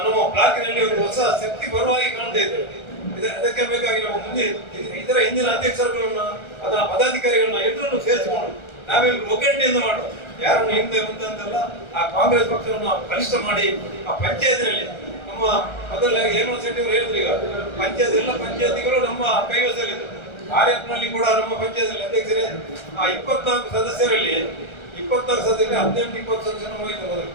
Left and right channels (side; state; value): right; late; 1.3 ms